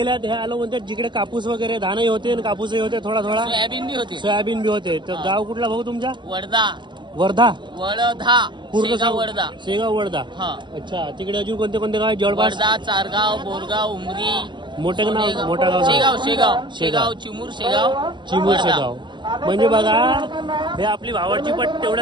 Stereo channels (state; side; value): late; left; 0.22 ms